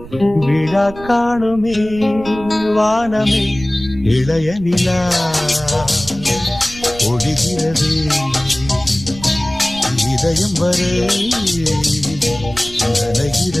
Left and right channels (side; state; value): right; noise; rumble, 15 dB below the sound